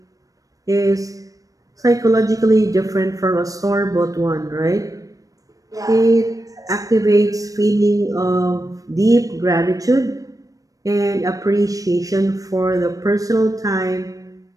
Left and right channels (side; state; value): left; late; 0.17 ms